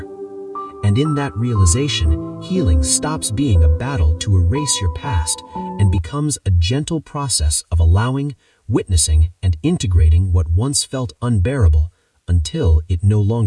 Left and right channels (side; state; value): both; identical; correlation 1.00